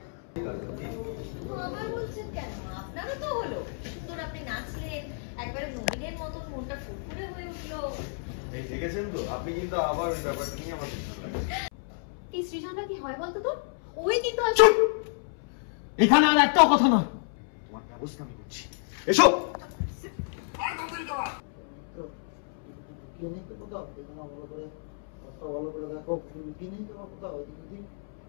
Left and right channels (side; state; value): right; silent; 58 dB below the other